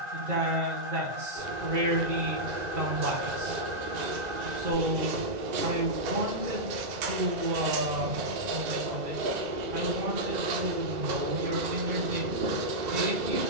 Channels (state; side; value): late; left; 2.0 ms